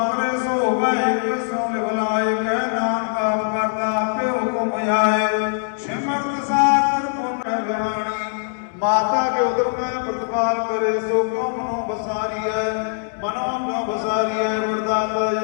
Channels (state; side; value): silent; right; digital silence